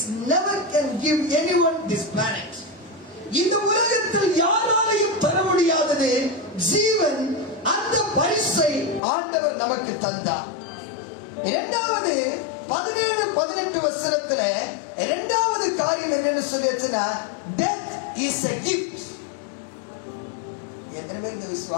never can give anyone this planet. இந்த உலகத்தில் யாராலையும் தர முடியாதது ஜீவன். அந்த பரிசை ஆண்டவர் நமக்கு தந்தார். இரண்டாவது 17-18 வசனத்துல இரண்டாவது காரியம் என்னன்னு சொல்லிச்சுன்னா, death is a gift. எத்தனை பேர் இதை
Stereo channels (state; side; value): drops out; right; at 9.0 s